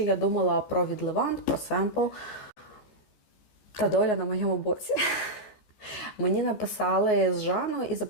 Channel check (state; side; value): late; right; 14 ms